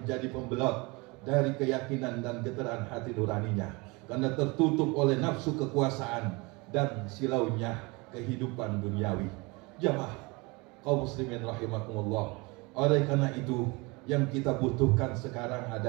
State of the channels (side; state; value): left; quieter; 26.3 dB